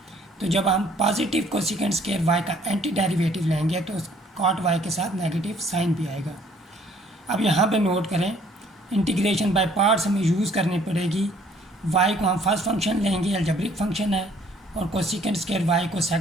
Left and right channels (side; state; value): both; normal; correlation 0.60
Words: तो जब हम पॉजिटिव cosec² y का एंटी डेरिवेटिव लेंगे तो cot y के साथ नेगेटिव साइन भी आएगा। अब यहाँ पे नोट करें, इंटीग्रेशन बाय पार्ट्स हमें यूज़ करनी पड़ेगी। y को हम फर्स्ट फंक्शन लेंगे, अलजेब्रिक फंक्शन है, और cosec² y को